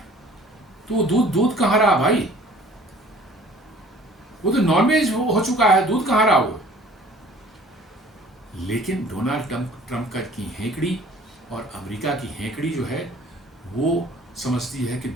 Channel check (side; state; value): both; normal; correlation 0.51